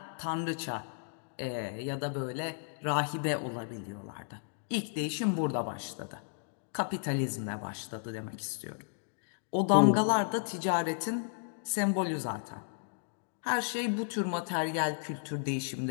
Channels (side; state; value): right; silent; digital silence